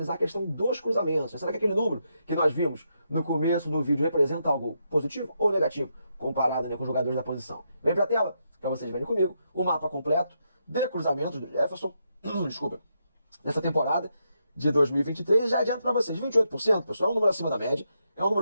a questão dos cruzamentos. Será que aquele número que nós vimos no começo do vídeo representa algo positivo ou negativo, comparado, né, com os jogadores da posição? Vem para a tela, para vocês verem comigo, o mapa completo de cruzamentos do Jefferson, desculpa, nessa temporada de 2023. Já adianto para vocês, 28%, pessoal, é um número acima da média, é um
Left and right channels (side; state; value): both; inverted; correlation -0.81